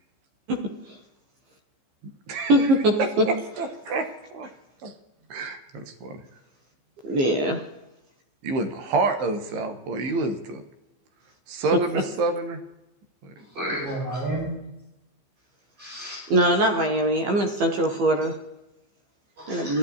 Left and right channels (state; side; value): late; left; 15 ms